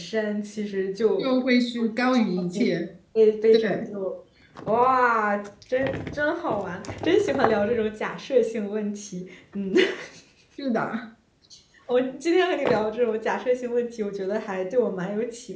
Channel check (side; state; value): both; identical; correlation 1.00